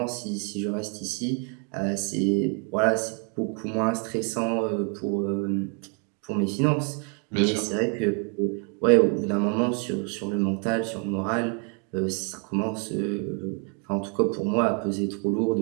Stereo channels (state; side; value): quieter; left; 38.2 dB